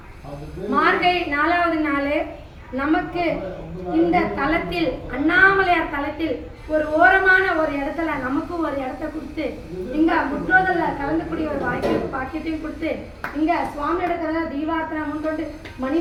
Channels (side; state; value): both; identical; correlation 1.00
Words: மார்கழி 4வது நாள். நமக்கு இந்த தலத்தில் அண்ணாமலையார் தலத்தில் ஒரு ஓரமான ஒரு இடத்துல நமக்கு ஒரு இடத்த கொடுத்து இங்க முற்றோதல்ல கலந்துக்கூடிய ஒரு வாய்ப்பு பாக்கியத்தையும் கொடுத்து இங்க சுவாமியோட கதை தீபார்த்தனை முன்கொண்டு